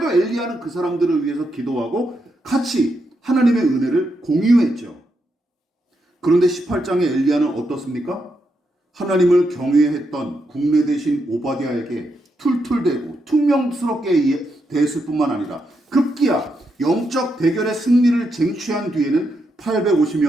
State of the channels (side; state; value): both; normal; correlation 0.82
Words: 엘리야는 그 사람들을 위해서 기도하고 같이 하나님의 은혜를 공유했죠. 그런데 18장의 엘리야는 어떻습니까? 하나님을 경외했던 국내 대신 오바댜에게 툴툴대고 퉁명스럽게 대했을 뿐만 아니라 급기야 영적 대결의 승리를 쟁취한 뒤에는